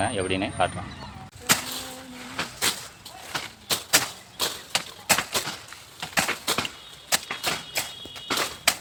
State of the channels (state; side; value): identical; both; correlation 1.00